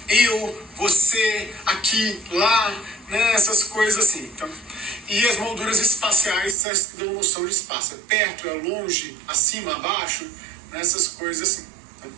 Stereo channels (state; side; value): drops out; left; at 6.6 s